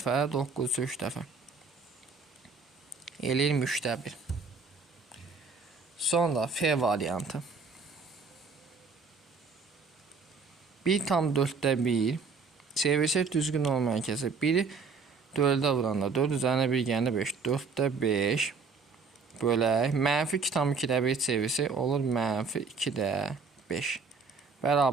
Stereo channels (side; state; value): left; quieter; 4.8 dB